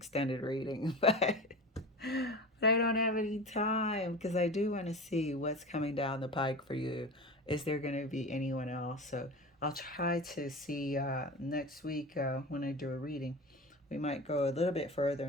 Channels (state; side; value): normal; both; correlation 0.31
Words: reading, but I don't have any time because I do want to see what's coming down the pike for you. Is there going to be anyone else? So I'll try to see next week when I do a reading. We might go a little bit further